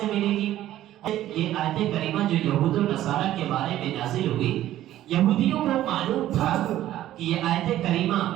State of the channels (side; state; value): left; quieter; 13.4 dB